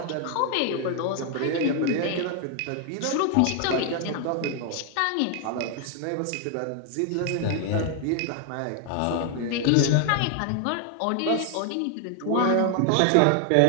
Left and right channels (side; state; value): both; different; correlation 0.00